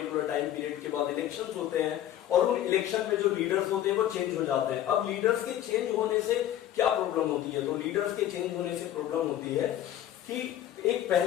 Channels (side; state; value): right; quieter; 12.0 dB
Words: टाइम पीरियड के बाद इलेक्शंस होते हैं, और उन इलेक्शन में जो लीडर्स होते हैं वो चेंज हो जाते हैं। अब लीडर्स के चेंज होने से क्या प्रॉब्लम होती है? तो लीडर्स के चेंज होने से प्रॉब्लम होती है कि एक